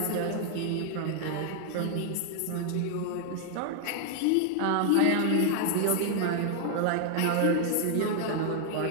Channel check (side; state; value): both; different; correlation 0.00